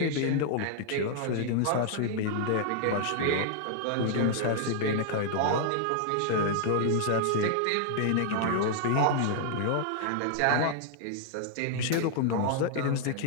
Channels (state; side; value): different; both; correlation -0.01